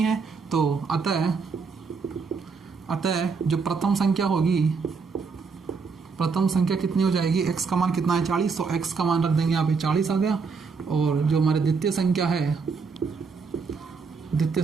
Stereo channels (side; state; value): left; quieter; 5.0 dB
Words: है, तो अतः जो प्रथम संख्या होगी, प्रथम संख्या कितनी हो जाएगी, x का मान कितना है 40, तो x का मान रख देंगे यहाँ पे 40 आ गया। और जो हमारे द्वितीय संख्या है, द्वितीय